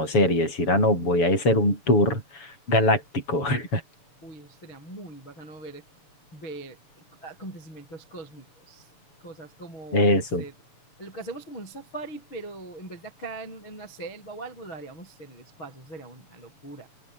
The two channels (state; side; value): late; right; 7.1 ms